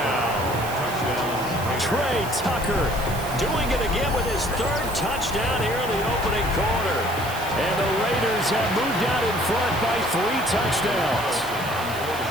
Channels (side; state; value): right; noise; hiss, 13 dB below the sound